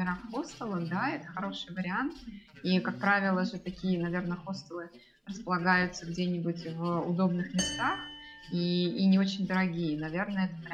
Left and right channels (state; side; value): identical; both; correlation 1.00